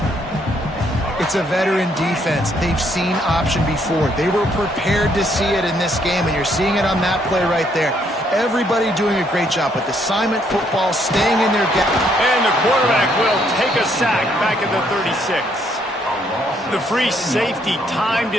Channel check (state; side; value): normal; both; correlation 0.70